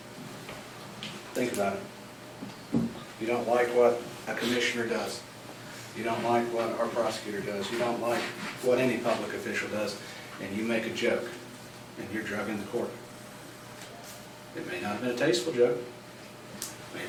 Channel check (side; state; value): both; identical; correlation 1.00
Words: Think about it. You don't like what a commissioner does. You don't like what our prosecutor does. You don't like what any public official does, and you make a joke, and you're drugging the court. It may not have been a tasteful joke. It may have